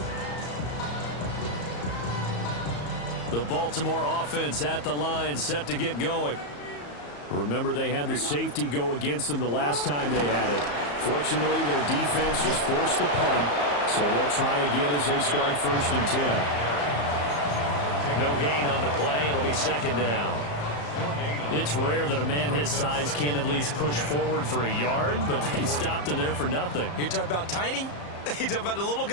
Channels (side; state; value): right; late; 34 ms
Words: The Baltimore offense at the line, set to get going. Remember, they had the safety go against them the last time they had it. Fortunately, their defense just forced the punt, so they'll try again as they start 1st and 10. No gain on the play. It'll be 2nd down. It's rare that a man his size can at least push forward for a yard, but they stopped him there for nothing. You're talking about Tiny? You talking about the little